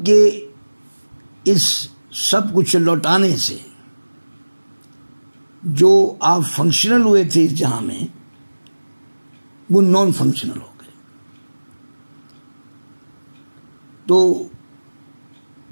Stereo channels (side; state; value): both; inverted; correlation -1.00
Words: کے اس سب کچھ لوٹانے سے جو آپ فنکشنل ہوئے تھے اس جہاں میں، وہ نان فنکشنل ہو گئے۔ تو